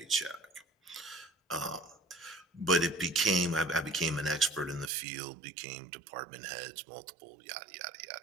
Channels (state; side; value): drops out; left; at 4.9 s